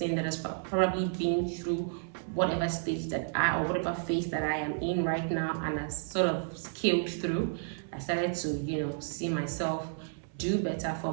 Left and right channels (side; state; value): left; silent; 57 dB below the other